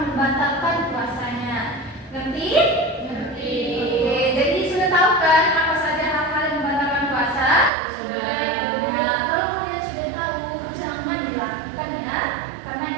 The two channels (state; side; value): drops out; left; at 7.7 s